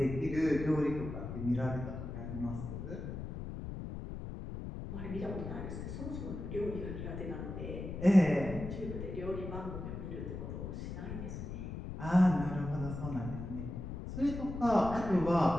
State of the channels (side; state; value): left; noise; rumble, 7 dB below the sound